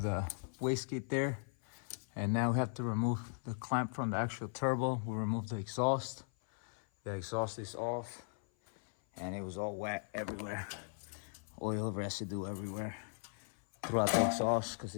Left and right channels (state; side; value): silent; right; 53 dB below the other